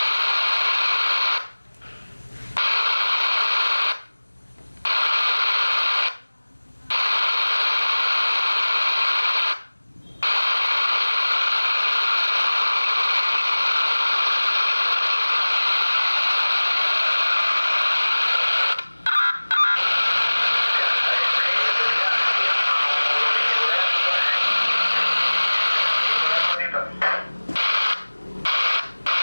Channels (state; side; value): inverted; both; correlation -1.00